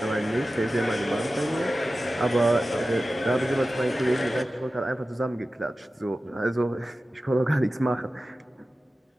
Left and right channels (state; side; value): normal; both; correlation 0.95